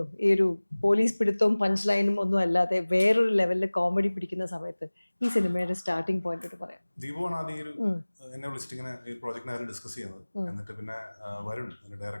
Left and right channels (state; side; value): inverted; both; correlation -1.00